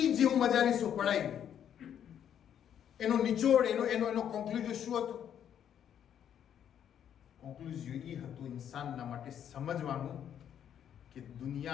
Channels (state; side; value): quieter; right; 9.4 dB